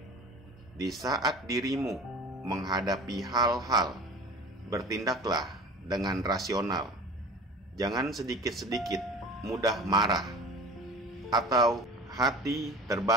di saat dirimu menghadapi hal-hal, bertindaklah dengan rasional. Jangan sedikit-sedikit mudah marah atau hati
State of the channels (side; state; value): both; normal; correlation 0.40